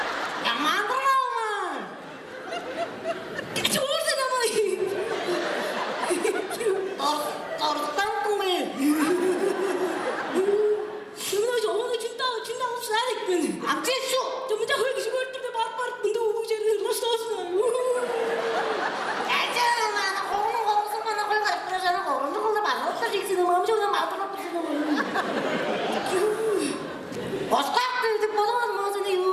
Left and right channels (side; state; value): both; identical; correlation 1.00